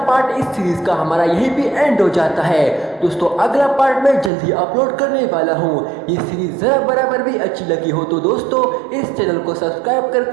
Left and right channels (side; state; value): left; drops out; at 4.3 s